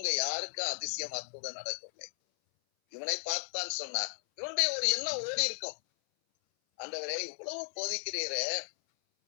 யாருக்கும் அதிசயம் அற்புதம் நடக்கவில்லை. இவனை பார்த்தான் சொன்னார். இவனுடைய ஒரு எண்ணம் ஓடி இருக்கும், ஆண்டவரே இவ்வளவு போதிக்கிறீரே,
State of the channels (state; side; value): silent; right; 54 dB below the other